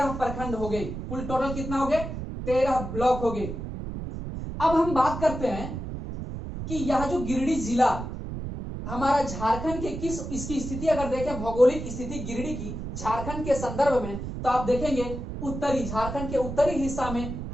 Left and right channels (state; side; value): noise; right; rumble, 7 dB below the sound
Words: प्रखंड हो गए, कुल टोटल कितना हो गए, 13 ब्लॉक हो गए। अब हम बात करते हैं कि यह जो गिरिडीह जिला हमारा झारखंड के किस, इसकी स्थिति अगर देखें, भौगोलिक स्थिति गिरिडीह की झारखंड के संदर्भ में, तो आप देखेंगे उत्तरी, झारखंड के उत्तरी हिस्सा में